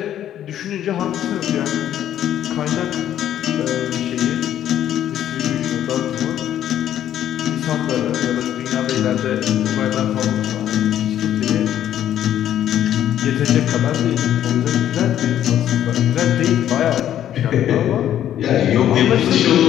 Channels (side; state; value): right; quieter; 11.1 dB